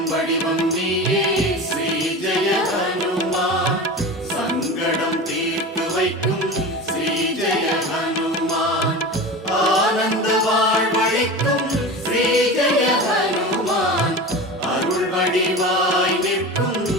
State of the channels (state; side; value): normal; both; correlation 0.30